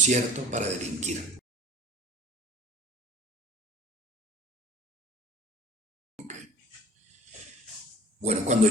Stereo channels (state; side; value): normal; both; correlation 0.45